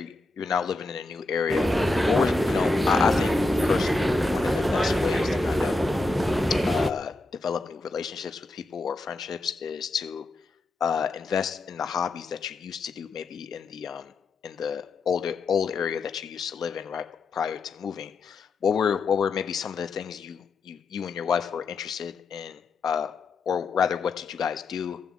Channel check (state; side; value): quieter; right; 3.3 dB